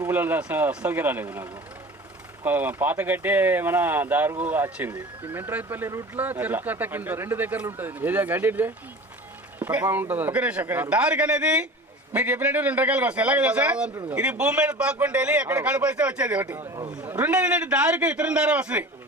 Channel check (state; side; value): normal; both; correlation 0.37